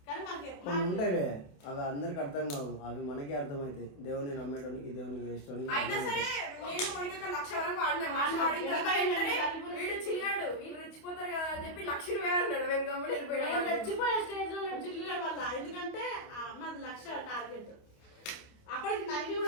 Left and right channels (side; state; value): right; late; 28 ms